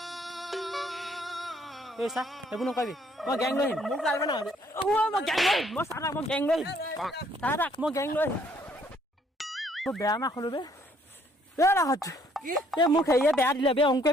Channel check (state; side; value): normal; both; correlation 0.64